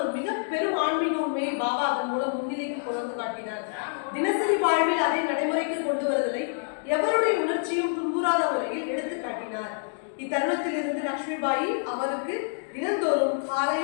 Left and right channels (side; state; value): right; silent; digital silence